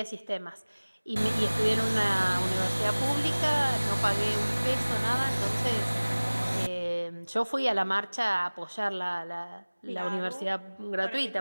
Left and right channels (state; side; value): inverted; both; correlation -1.00